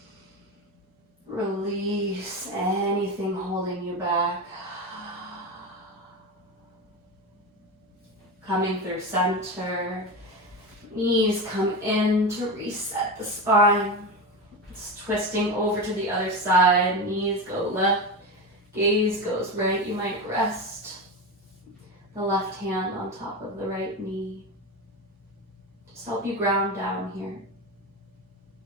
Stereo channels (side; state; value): both; normal; correlation 0.20